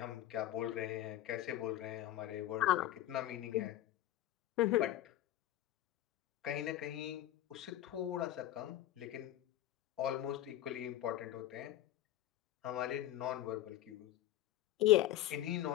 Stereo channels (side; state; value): right; quieter; 13.7 dB